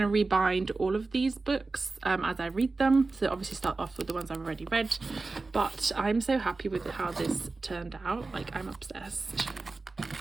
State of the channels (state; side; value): quieter; left; 3.7 dB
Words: to rebind all of these books as I read them. So obviously start off with the ones I've already read, but I'm so happy with how this turned out. Like, I'm obsessed.